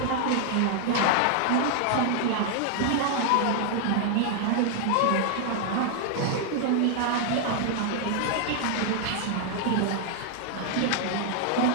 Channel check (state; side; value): different; both; correlation 0.00